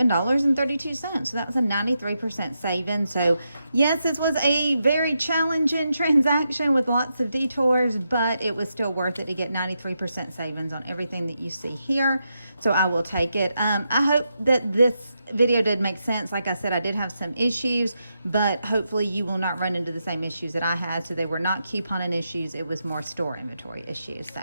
So that was a 93% saving. So yes, this was a very challenging transaction with lots of detours, but it was still worth it to get 93% savings on everything that you see here. So I will take it. I hope that this video did make sense. Like I said, I did have some issues, but hopefully you will not run into the same issues that I had. So they were not couponing issues. It was more store inventory issues. So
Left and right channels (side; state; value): both; inverted; correlation -0.84